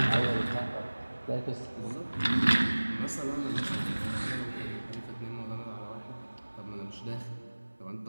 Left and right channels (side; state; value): both; inverted; correlation -1.00